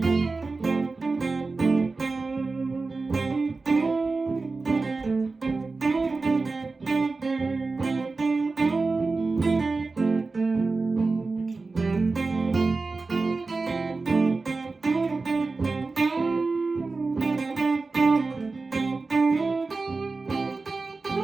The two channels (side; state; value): left; quieter; 3.8 dB